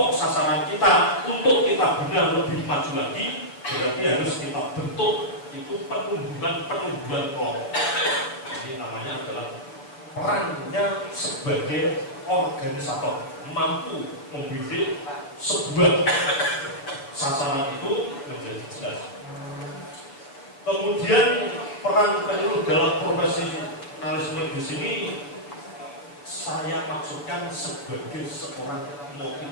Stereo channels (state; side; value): late; right; 7.2 ms